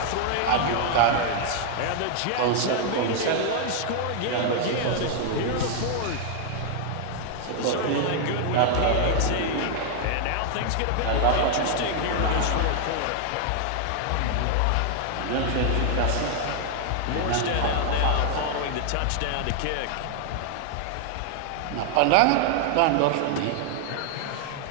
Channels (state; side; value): different; both; correlation 0.00